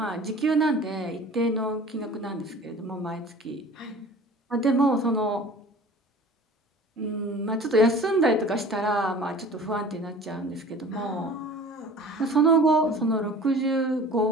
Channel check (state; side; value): normal; both; correlation 0.43